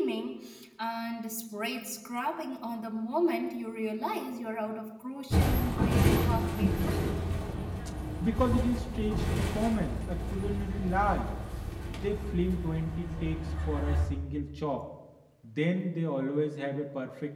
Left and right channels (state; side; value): identical; both; correlation 1.00